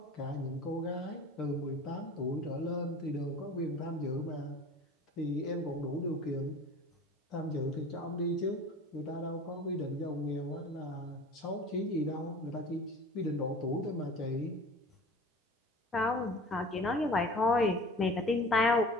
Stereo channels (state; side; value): normal; both; correlation 0.41